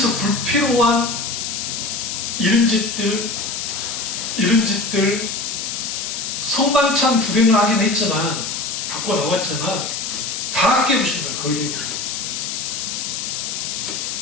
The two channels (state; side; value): noise; left; hiss, 4 dB below the sound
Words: 불필요한 이런 짓들 성만찬 구경을 하긴 했지만, 갖고 나왔지만 다 깨부신 거예요. 거의